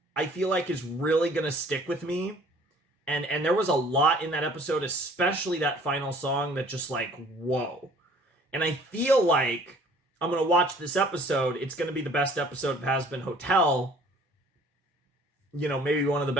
I feel like, is really going to stick with me. And there was a lot in that episode, especially that final song that just like, whoa. And I feel like I'm going to watch this episode. It's going to be the best episode of Hazbin Hotel. You know, maybe one of the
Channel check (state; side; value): normal; both; correlation 0.53